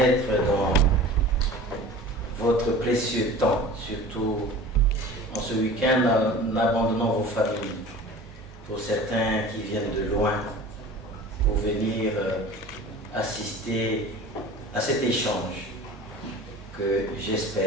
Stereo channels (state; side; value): normal; both; correlation 0.40